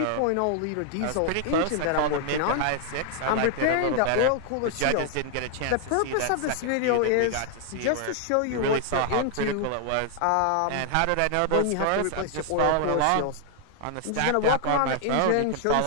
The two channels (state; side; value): different; both; correlation 0.00